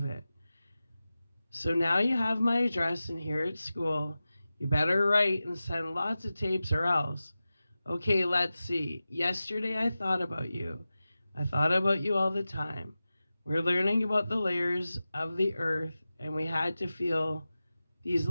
it. So now you have my address and here at school. You better write and send lots of tapes or else. Okay, let's see. Yesterday I thought about you. I thought about you all the time. We're learning about the layers of the earth, and we had to feel these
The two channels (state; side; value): inverted; both; correlation -0.95